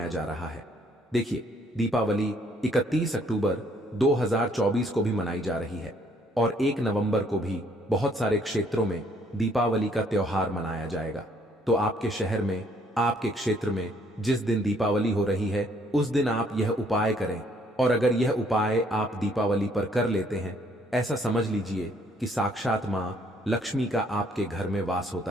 जा रहा है। देखिए दीपावली 31 अक्टूबर 2024 को भी मनाई जा रही है और 1 नवंबर को भी बहुत सारे क्षेत्रों में दीपावली का त्योहार मनाया जाएगा। तो आपके शहर में आपके क्षेत्र में जिस दिन दीपावली हो रही है उस दिन आप यह उपाय करें और अगर यह उपाय आप दीपावली पर कर लेते हैं ऐसा समझ लीजिए कि साक्षात मां लक्ष्मी का आपके घर में वास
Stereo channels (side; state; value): both; normal; correlation 0.65